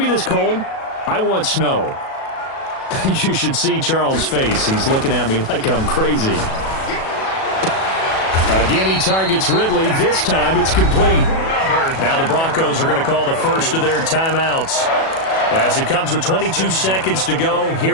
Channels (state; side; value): late; right; 37 ms